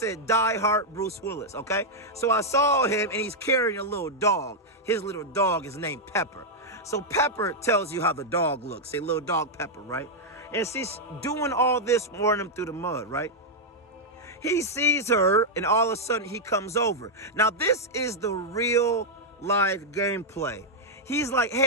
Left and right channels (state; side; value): normal; both; correlation -0.03